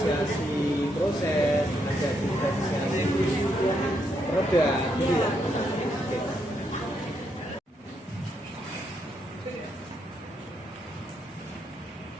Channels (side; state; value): both; normal; correlation 0.78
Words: proses, ada diferensiasi produk, gitu ya. Oke.